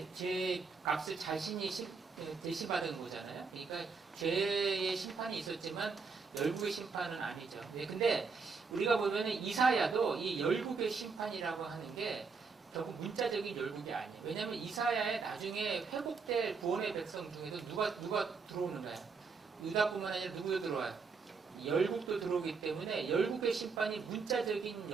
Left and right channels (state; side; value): quieter; left; 4.9 dB